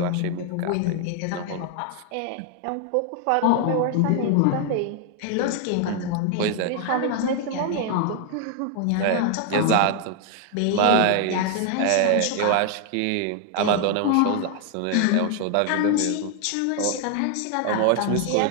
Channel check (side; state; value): both; different; correlation 0.00